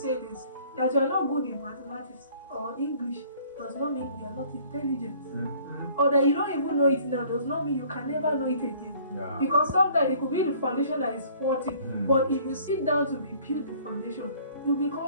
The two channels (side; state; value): both; inverted; correlation -0.55